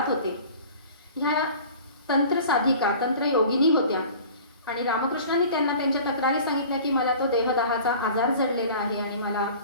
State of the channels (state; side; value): inverted; both; correlation -0.43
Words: होते. ह्या तंत्र साधिका तंत्र योगिनी होत्या आणि रामकृष्णांनी त्यांना त्यांच्या तक्रारी सांगितल्या की मला तो देहदाहाचा आजार जडलेला आहे आणि मला